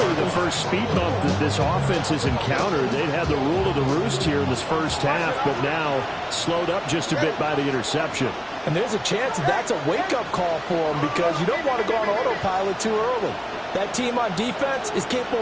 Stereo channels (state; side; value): identical; both; correlation 1.00